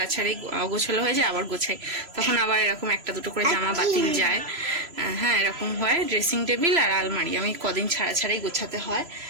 ছাড়াই গোছালো হয়ে যায়, আবার গোছাই। তখন আবার এরকম একটা দুটো করে জামা বাতিল যায়, হ্যাঁ এরকম হয়। ড্রেসিং টেবিল আর আলমারি আমি কদিন ছাড়া ছাড়াই গোছাতে হয়,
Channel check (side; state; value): left; late; 3.0 ms